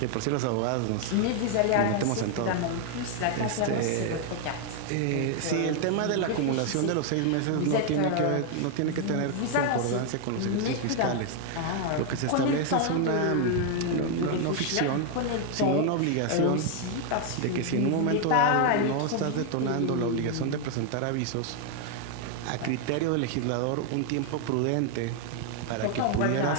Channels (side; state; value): both; different; correlation 0.00